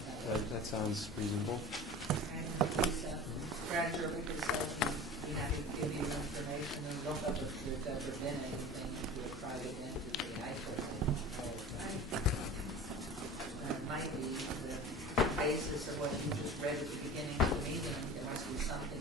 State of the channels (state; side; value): normal; both; correlation 0.37